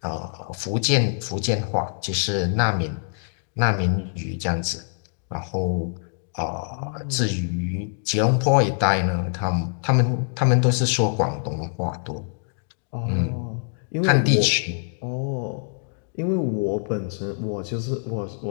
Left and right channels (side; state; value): right; silent; digital silence